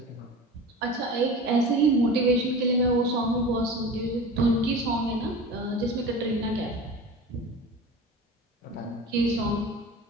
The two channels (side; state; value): both; normal; correlation 0.34